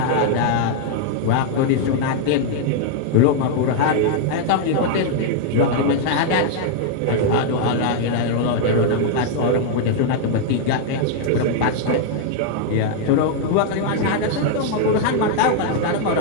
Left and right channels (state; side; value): different; both; correlation 0.00